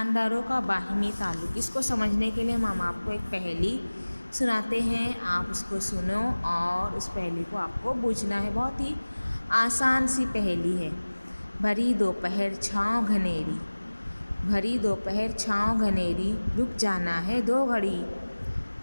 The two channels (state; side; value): inverted; both; correlation -1.00